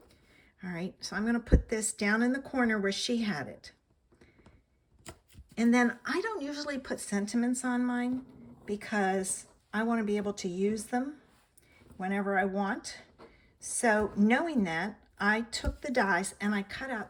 All right, so I'm going to put this down in the corner where she had it. And then I don't usually put sentiments on mine because I want to be able to use them whenever I want. So knowing that, I took the dies and I cut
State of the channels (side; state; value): both; identical; correlation 1.00